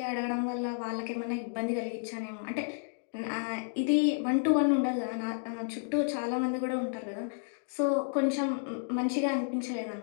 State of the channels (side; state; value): right; silent; digital silence